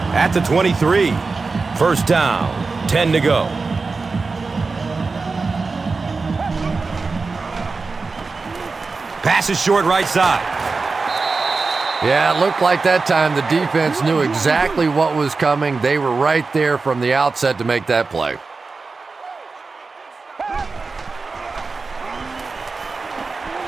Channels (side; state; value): left; quieter; 4.2 dB